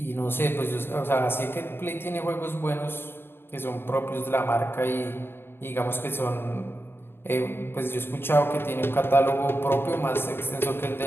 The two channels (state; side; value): late; right; 0.11 ms